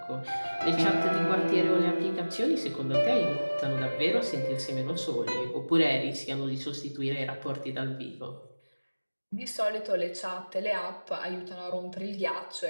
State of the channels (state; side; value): inverted; both; correlation -1.00